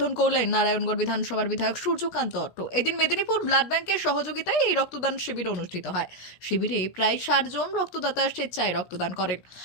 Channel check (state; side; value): late; right; 17 ms